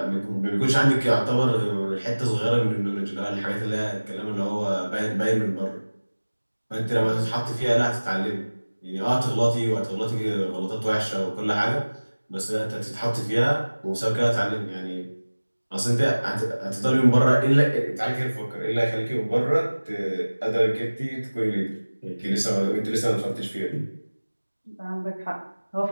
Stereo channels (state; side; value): inverted; both; correlation -1.00